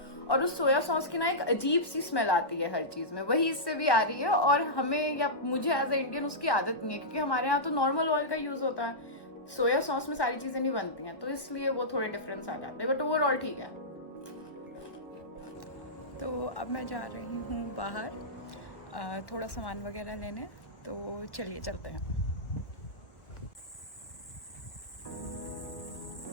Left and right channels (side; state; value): right; late; 1.1 ms